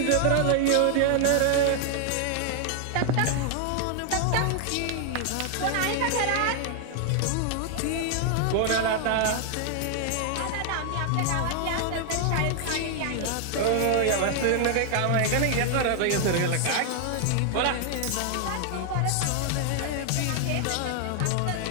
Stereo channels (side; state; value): both; different; correlation 0.00